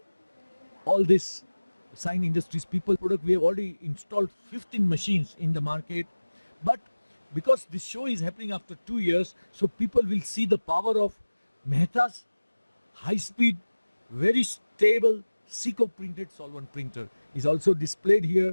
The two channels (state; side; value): inverted; both; correlation -1.00